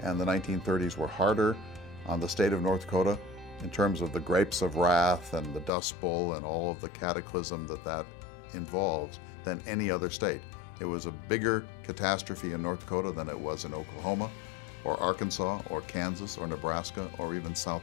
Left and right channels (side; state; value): right; drops out; at 5.7 s